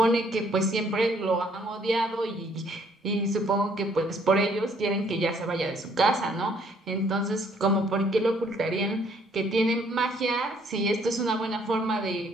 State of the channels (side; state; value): both; normal; correlation 0.64